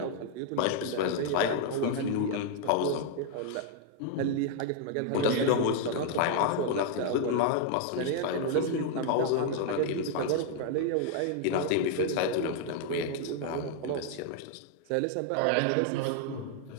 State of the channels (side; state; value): both; different; correlation 0.00